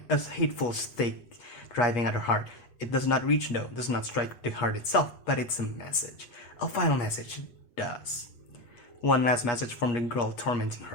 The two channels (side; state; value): right; late; 8.4 ms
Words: a hateful stake driving at her heart. It does not reach though, does not strike the heart itself, but it's a message. A final message, it does. One last message from the girl tormenting